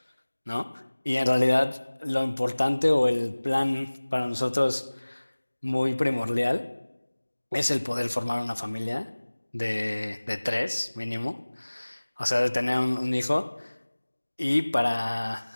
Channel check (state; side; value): inverted; both; correlation -1.00